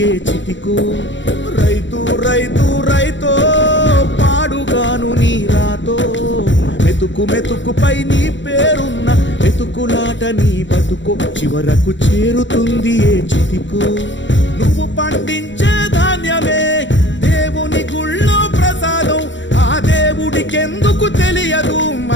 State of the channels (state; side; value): late; right; 0.54 ms